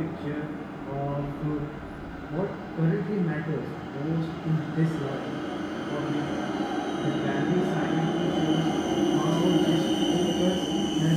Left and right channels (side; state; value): both; identical; correlation 1.00